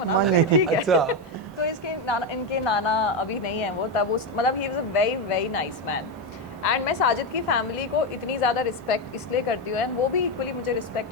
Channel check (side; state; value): both; normal; correlation 0.09